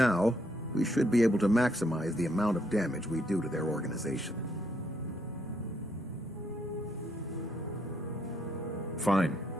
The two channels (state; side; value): normal; both; correlation 0.73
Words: we should be able to maximize the amount of damage we do to their organization. Fine,